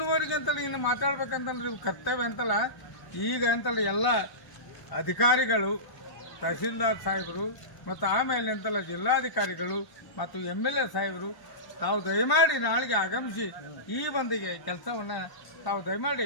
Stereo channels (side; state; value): right; late; 1.0 ms